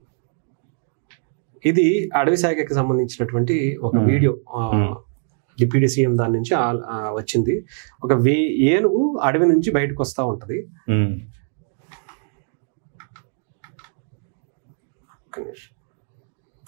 ఇది అడవి శాఖకి సంబంధించినటువంటి ఒక వీడియో. డిప్యూటీ సీఎం దాని నుంచి వచ్చింది. ఒక ఏనుగు అడవి నుంచి బయటకు వస్తూ ఉంటది.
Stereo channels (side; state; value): left; silent; 61 dB below the other